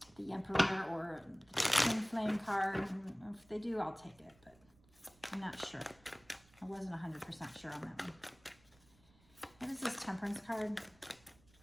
The Emperor or the Twinflame card. If they do, I'll take it, but I'm not sure. I wasn't 100% sure on that one. What is this Temperance card?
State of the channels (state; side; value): noise; right; rumble, 29 dB below the sound